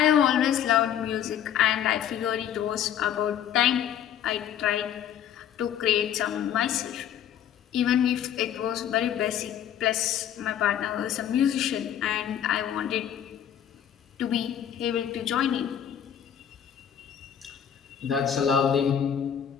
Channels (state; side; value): quieter; right; 9.7 dB